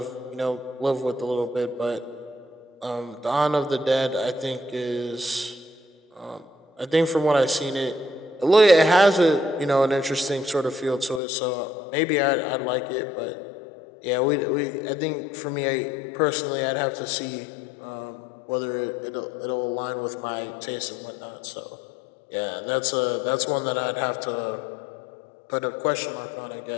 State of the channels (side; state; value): right; drops out; at 11.2 s